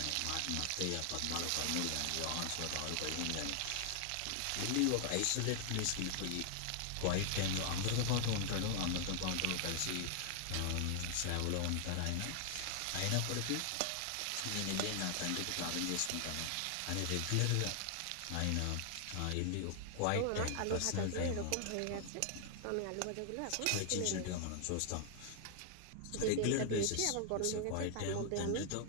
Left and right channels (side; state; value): both; different; correlation 0.00